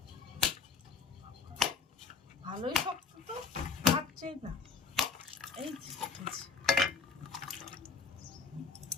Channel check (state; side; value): quieter; right; 5.0 dB